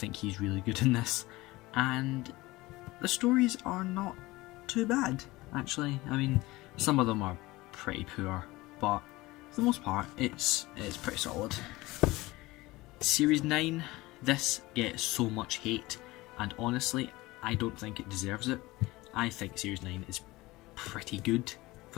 he's really good in this, and the stories are not too bad, actually. I mean, some of them are pretty poor, but for the most part, it's pretty solid. Series 9, this gets so much hate, and honestly, I don't think it deserves it. I think Series 9 is pretty good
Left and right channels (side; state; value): right; quieter; 20.2 dB